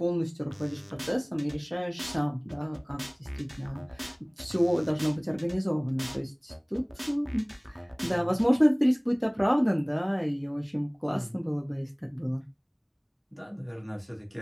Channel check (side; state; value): both; identical; correlation 1.00